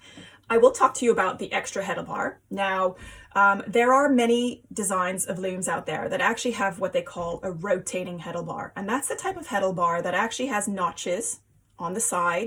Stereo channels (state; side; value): identical; both; correlation 1.00